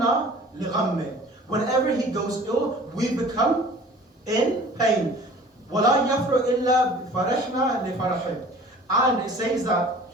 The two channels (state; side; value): normal; both; correlation 0.46